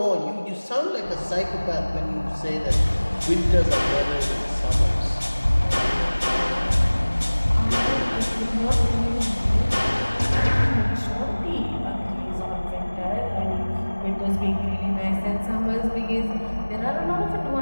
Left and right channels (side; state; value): both; inverted; correlation -1.00